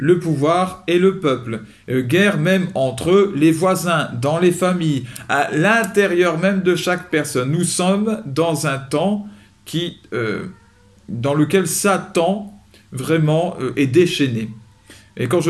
pouvoir et le peuple, guerre même entre les voisins, dans les familles, à l'intérieur même de chaque personne. Nous sommes dans un temps dans lequel Satan vraiment est déchaîné. Et quand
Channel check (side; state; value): both; identical; correlation 1.00